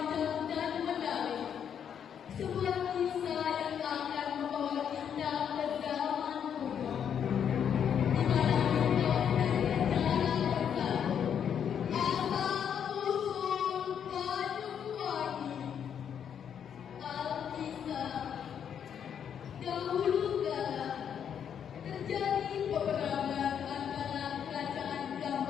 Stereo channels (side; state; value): right; quieter; 8.3 dB